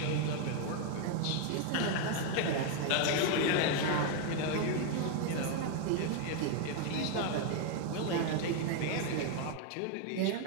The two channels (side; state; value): both; different; correlation 0.00